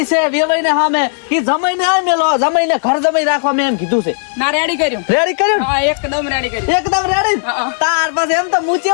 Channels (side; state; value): right; silent; digital silence